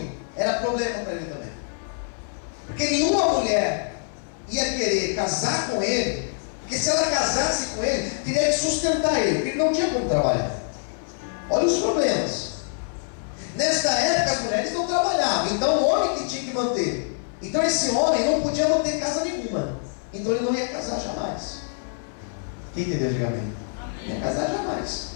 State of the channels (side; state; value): right; silent; 60 dB below the other